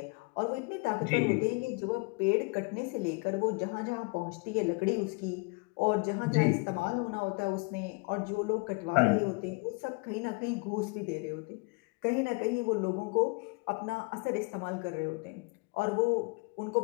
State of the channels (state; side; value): quieter; right; 30.7 dB